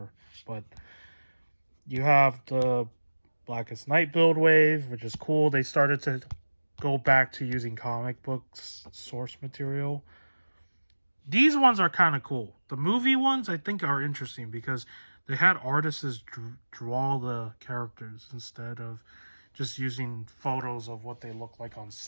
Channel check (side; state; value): both; inverted; correlation -1.00